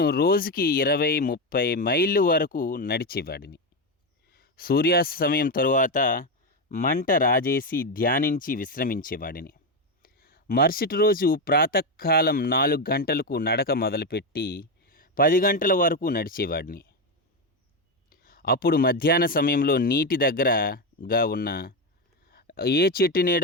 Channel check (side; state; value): both; normal; correlation 0.10